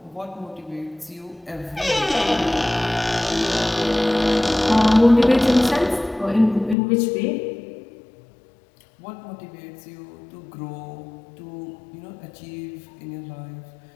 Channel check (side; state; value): right; drops out; at 6.8 s